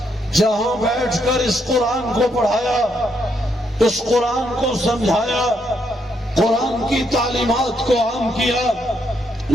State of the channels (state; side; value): normal; both; correlation 0.76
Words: جہاں بیٹھ کر اس قرآن کو پڑھایا، اس قرآن کو سمجھایا، قرآن کی تعلیمات کو عام کیا،